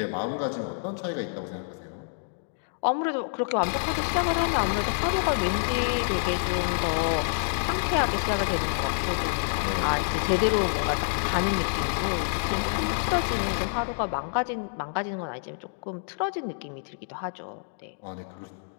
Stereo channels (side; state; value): right; silent; digital silence